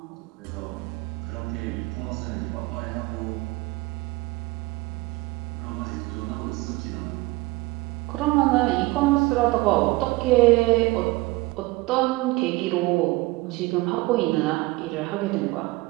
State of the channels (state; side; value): quieter; left; 21.6 dB